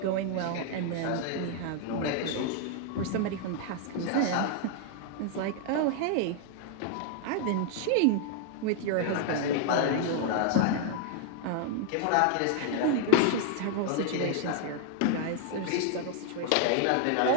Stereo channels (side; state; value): both; different; correlation 0.00